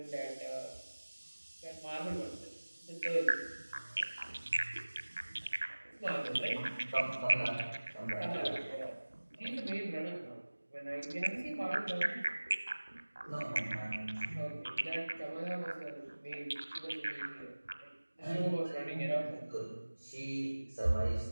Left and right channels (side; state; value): both; inverted; correlation -1.00